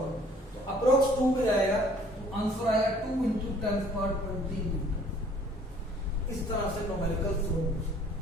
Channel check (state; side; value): normal; both; correlation 0.56